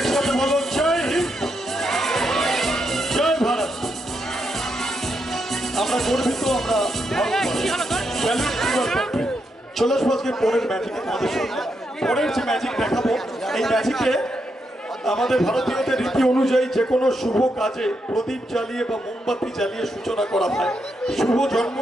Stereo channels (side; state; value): both; normal; correlation 0.81